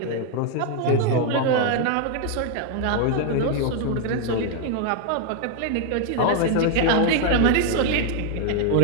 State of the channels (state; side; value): different; both; correlation 0.00